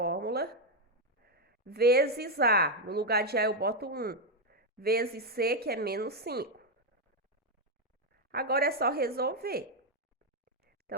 vezes A. No lugar de A, eu boto 1. Vezes C, que é menos 5. Agora é só resolver.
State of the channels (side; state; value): both; normal; correlation 0.03